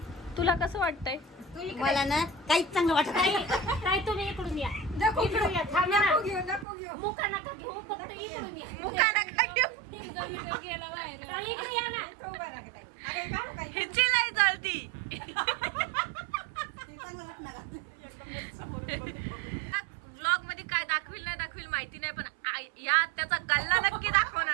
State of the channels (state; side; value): drops out; left; at 6.7 s